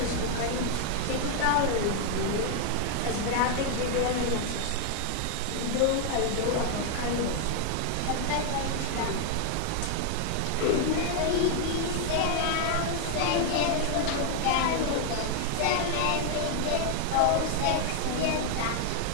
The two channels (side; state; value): both; different; correlation 0.00